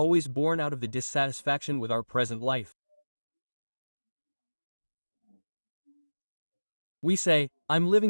born out of the dissatisfaction with our present life. We say, I'm living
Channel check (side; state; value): both; inverted; correlation -1.00